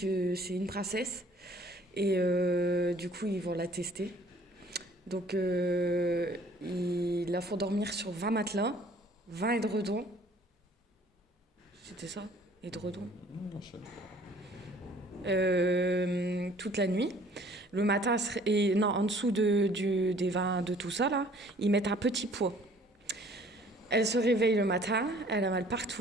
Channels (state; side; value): normal; both; correlation 0.55